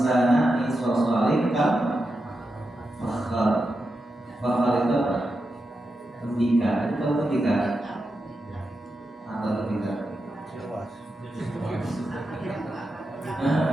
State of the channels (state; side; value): normal; both; correlation 0.88